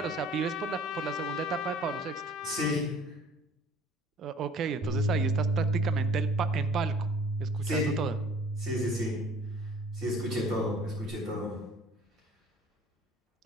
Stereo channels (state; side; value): normal; both; correlation 0.51